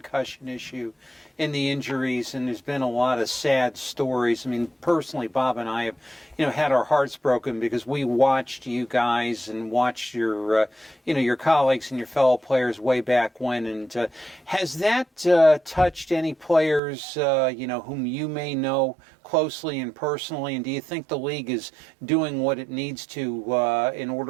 issue and the injuries, and there's been a lot of sad stories. I mean, personally, Bob and I have had our hearts broken because we watched you guys and watched your, your colleagues and your fellow players way back when. And has that touched any players, whom you may know closely and personally? And do you think the league is doing what it needs to in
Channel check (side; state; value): left; drops out; at 16.8 s